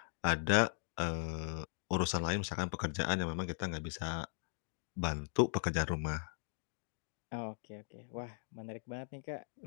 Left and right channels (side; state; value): right; silent; digital silence